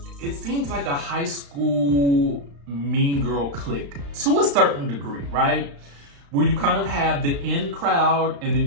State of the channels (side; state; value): left; late; 35 ms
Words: a high school mean girl clique to a certain degree, right? Where you kind of have the in crowd and